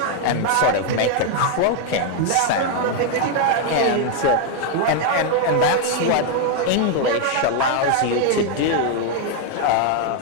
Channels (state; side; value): different; both; correlation 0.00